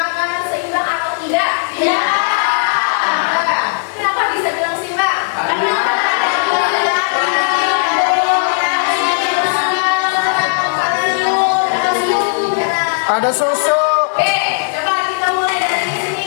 seimbang atau tidak? Ya. Kenapa bisa bilang seimbang? Karena Ada susu. Coba kita mulai dari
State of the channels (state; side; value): silent; right; digital silence